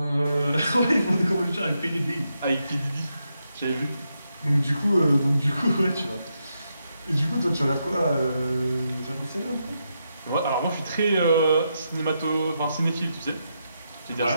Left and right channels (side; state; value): both; inverted; correlation -0.83